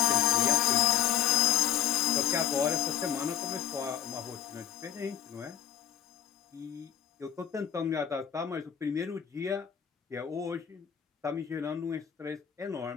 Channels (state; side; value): quieter; right; 10.2 dB